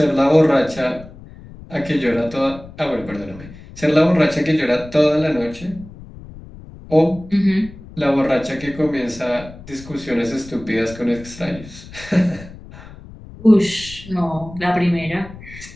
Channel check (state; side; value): noise; left; rumble, 17 dB below the sound